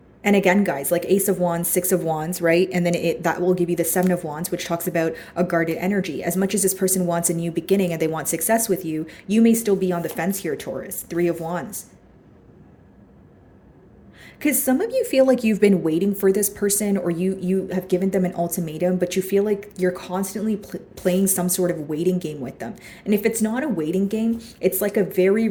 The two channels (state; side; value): identical; both; correlation 1.00